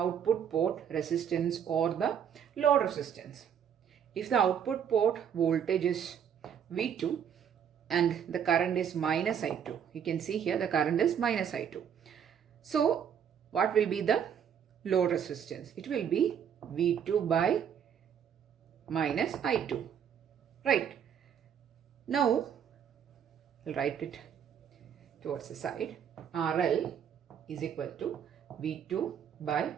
port resistance or the load resistance? If the output port voltage is V2 and the current is minus I2. You can see here the current is minus I2. So what will be the load resistance? It will be V2 by minus I2. Right. Now, I'll write it towards the side. RL is equal to V2 by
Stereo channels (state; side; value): quieter; left; 8.3 dB